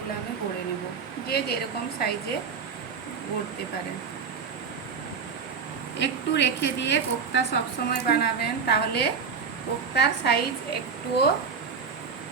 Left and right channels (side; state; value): left; quieter; 5.9 dB